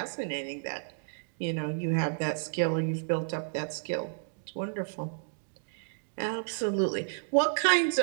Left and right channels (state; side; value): silent; left; digital silence